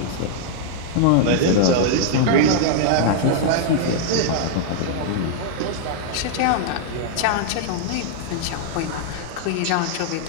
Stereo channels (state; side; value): different; both; correlation -0.01